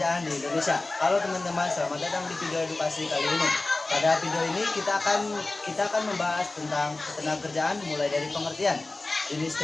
di Indonesia. Halo teman-teman, selamat datang di video edukasi kali ini. Pada video ini kita akan membahas tentang ketenagakerjaan mulai dari pengertian, jenis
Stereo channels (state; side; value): quieter; right; 3.1 dB